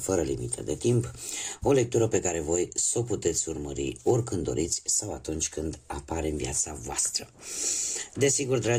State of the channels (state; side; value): identical; both; correlation 1.00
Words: limită de timp, o lectură pe care voi să o puteți urmări oricând doriți sau atunci când apare în viața voastră. Desigur,